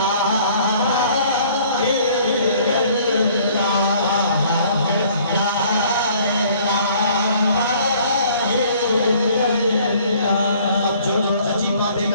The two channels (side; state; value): both; inverted; correlation -0.57